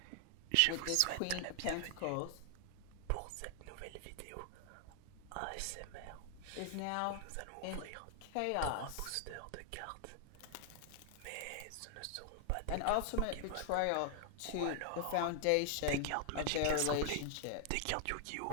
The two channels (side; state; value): both; different; correlation 0.00